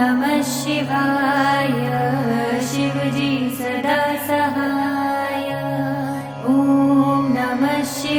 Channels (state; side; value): identical; both; correlation 1.00